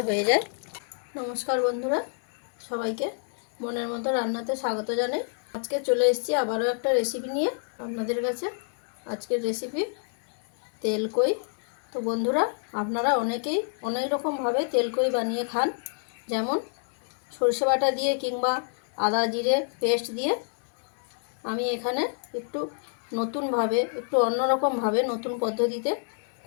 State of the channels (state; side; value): silent; right; 59 dB below the other